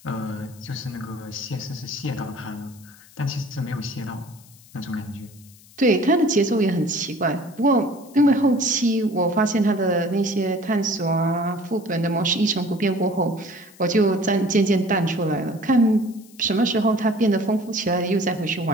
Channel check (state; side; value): noise; left; hiss, 25 dB below the sound